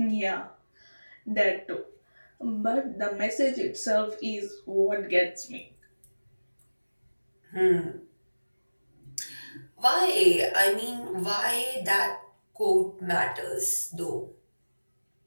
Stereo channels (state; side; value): inverted; both; correlation -1.00